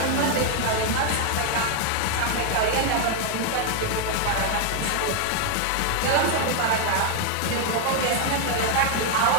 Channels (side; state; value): both; different; correlation 0.01